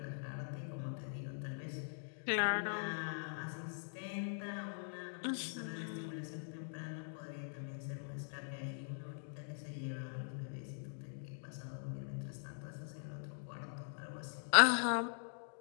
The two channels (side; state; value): right; silent; digital silence